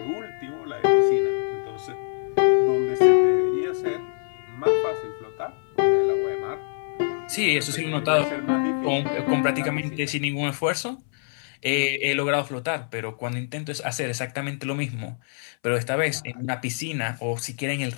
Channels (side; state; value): right; silent; 62 dB below the other